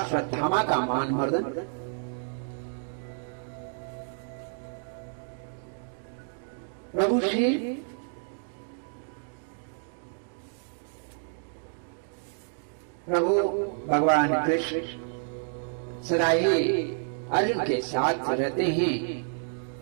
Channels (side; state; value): left; silent; digital silence